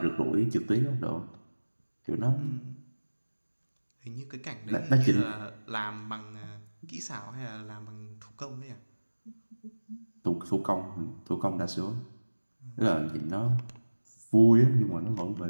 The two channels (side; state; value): both; inverted; correlation -1.00